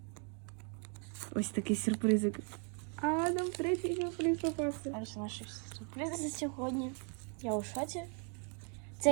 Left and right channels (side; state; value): left; quieter; 39.7 dB